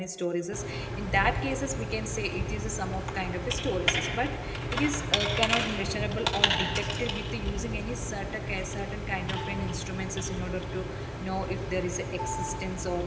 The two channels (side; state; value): both; identical; correlation 1.00